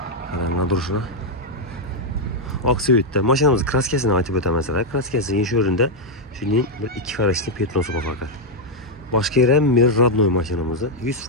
Qaranglar durishini. Oqsuyutda mashinamiz kraskasini aytib o'tamasalar, kraskasi inish o'rinda shuning bir ikki qarashli petnosi bor faqat. Boshqa yer ham mer rodnoy mashinamizni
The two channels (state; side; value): normal; both; correlation -0.01